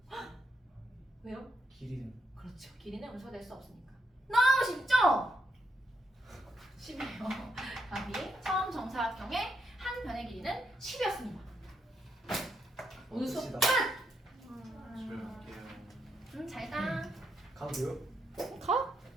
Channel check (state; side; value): normal; both; correlation 0.79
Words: 왜요? 길이는 그렇죠. 길이는 음수가 될 수 없으니까. 너무 쉽죠? 10이에요. 답이 처음 정사각형의 한 변의 길이는 10이었습니다. 오늘 수업 끝이다. 끝! 집에 갈게요. 잘 가. 가도 돼요? 가?